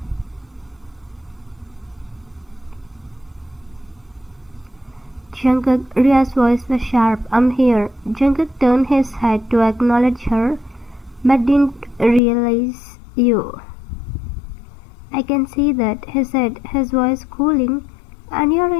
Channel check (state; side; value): drops out; right; at 12.2 s